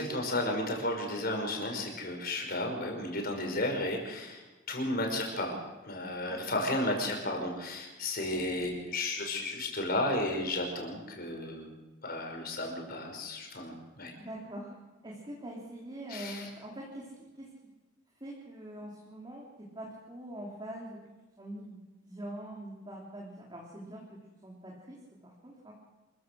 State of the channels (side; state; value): both; normal; correlation 0.07